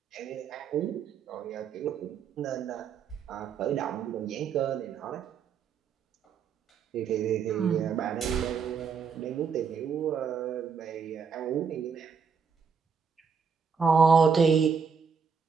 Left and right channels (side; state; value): left; quieter; 6.1 dB